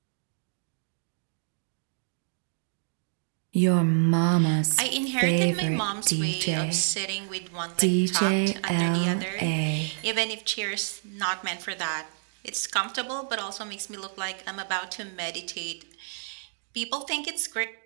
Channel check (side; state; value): left; silent; digital silence